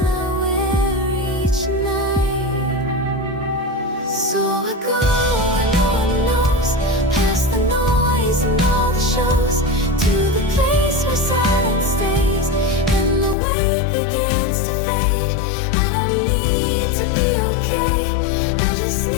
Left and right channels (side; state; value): right; drops out; at 13.4 s